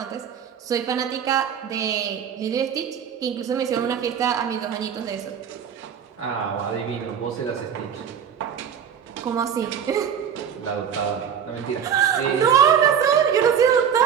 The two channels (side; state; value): left; quieter; 8.2 dB